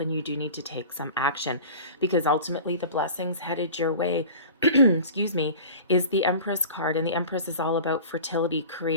you do need to take some action, because ultimately the blessings headed your way excuse me, is the Empress card. And the Empress is all about fertility,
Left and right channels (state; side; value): inverted; both; correlation -0.38